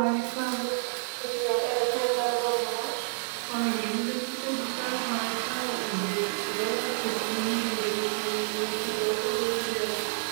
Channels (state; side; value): silent; left; digital silence